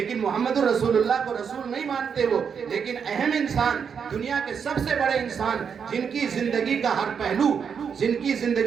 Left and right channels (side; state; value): left; quieter; 6.8 dB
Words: محمد رسول اللہ کو رسول نہیں مانتے وہ، لیکن اہم انسان، دنیا کے سب سے بڑے انسان، جن کی زندگی کا ہر